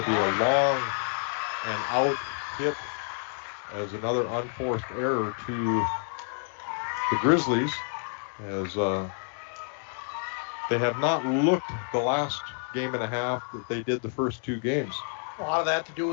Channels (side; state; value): right; silent; 59 dB below the other